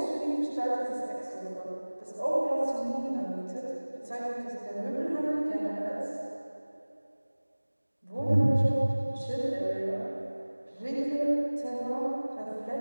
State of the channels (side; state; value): both; inverted; correlation -1.00